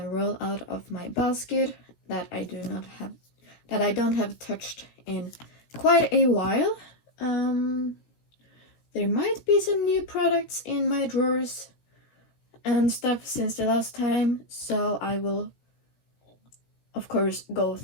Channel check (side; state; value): right; late; 17 ms